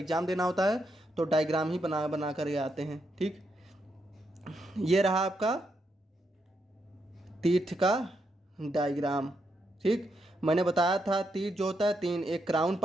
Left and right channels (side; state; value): both; normal; correlation 0.81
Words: देना होता है तो डायग्राम ही बना बना कर आते हैं। ठीक, ये रहा आपका टीथ का डायग्राम। ठीक, मैंने बताया था टीथ जो होता है 3, एक क्राउन